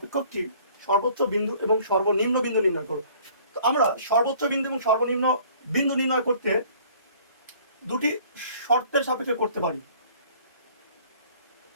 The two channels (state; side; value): inverted; both; correlation -0.54